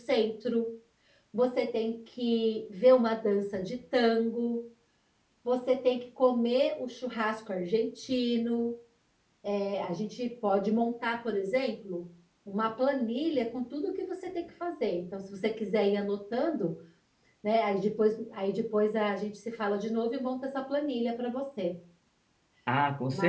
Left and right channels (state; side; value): identical; both; correlation 1.00